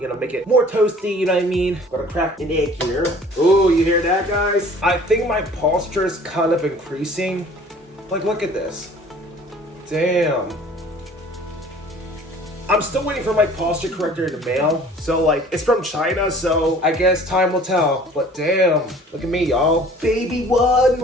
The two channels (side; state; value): both; normal; correlation 0.50